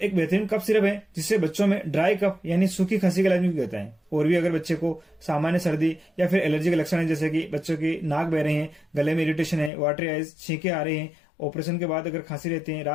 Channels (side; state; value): right; drops out; at 9.7 s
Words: एक बेहतरीन cough syrup है जिससे बच्चों में ड्राई कफ यानी सूखी खांसी का इलाज भी होता है। और भी अगर बच्चे को सामान्य सर्दी या फिर एलर्जी के लक्षण है, जैसे कि बच्चों की नाक बह रहे हैं, गले में इरिटेशन है, वाटरी आइज, छींके आ रहे हैं, ऑपरेशन के बाद अगर खांसी रहती है,